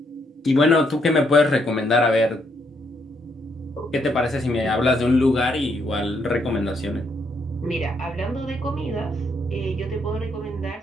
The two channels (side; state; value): both; normal; correlation 0.74